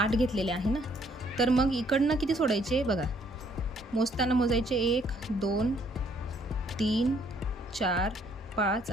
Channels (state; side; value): normal; both; correlation 0.65